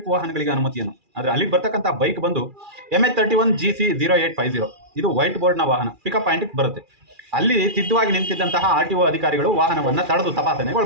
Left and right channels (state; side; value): late; left; 2.4 ms